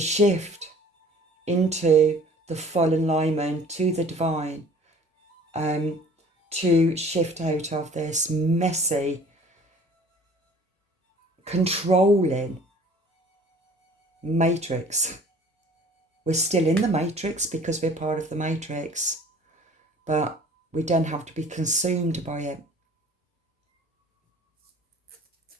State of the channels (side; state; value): both; normal; correlation 0.50